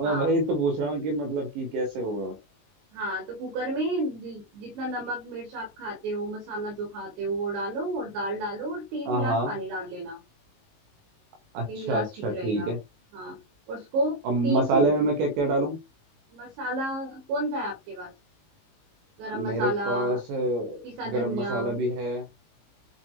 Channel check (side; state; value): left; late; 19 ms